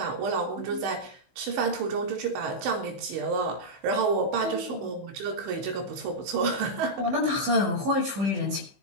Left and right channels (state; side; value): late; left; 15 ms